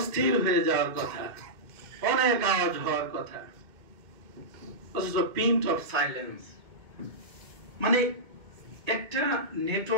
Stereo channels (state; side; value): late; left; 2.2 ms